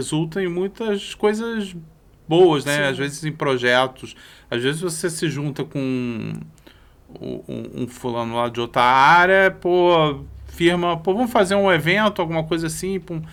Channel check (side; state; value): both; identical; correlation 1.00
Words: em muitas coisas boas, né? Sim. Às vezes em projetos, às vezes você se junta com um fulano lá de outra área, firma, vamos fazer um evento, alguma coisa assim,